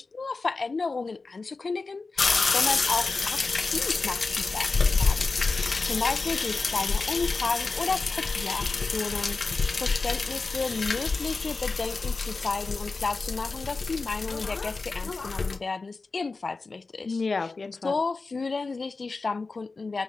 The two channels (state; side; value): quieter; right; 3.9 dB